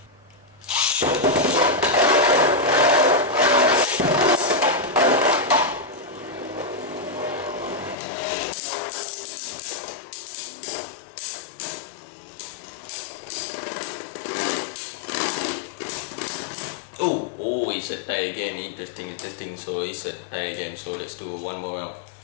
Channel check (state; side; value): drops out; right; at 8.0 s